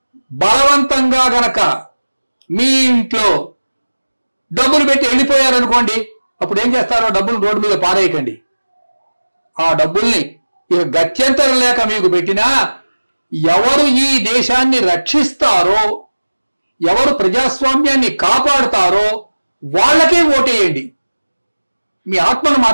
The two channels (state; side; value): inverted; both; correlation -1.00